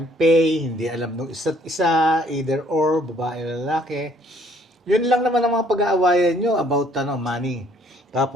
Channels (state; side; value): normal; both; correlation 0.62